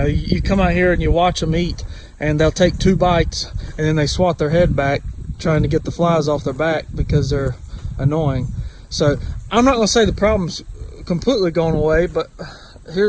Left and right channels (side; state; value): both; identical; correlation 1.00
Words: come out here and you watch them eat, and they'll take 2 bites and then they swat their head back trying to get the flies off their back because they're annoying. So I'm not going to say the problem's completely gone away, but